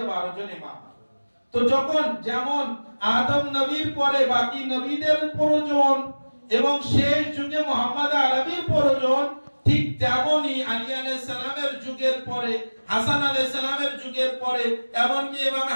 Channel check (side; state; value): both; inverted; correlation -1.00